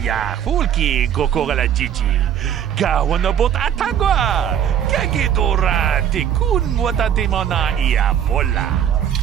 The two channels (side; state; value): left; quieter; 9.4 dB